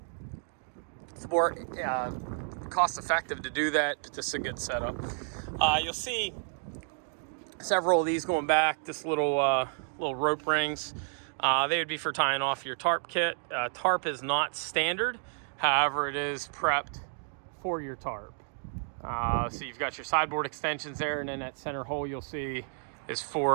It's more cost effective to do that, but this is a good setup. You'll see several of these going back, this little rope rings. They would be for tying off your tarp kit. Tarp is not standard, however, it is prepped for your tarp. So you've got your sideboard extensions there, and then that center hole you'll see is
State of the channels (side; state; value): left; silent; 55 dB below the other